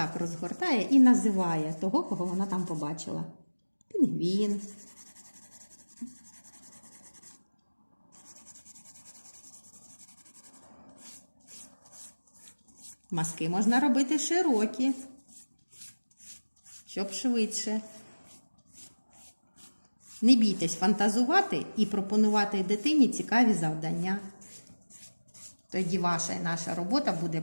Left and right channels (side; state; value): both; inverted; correlation -1.00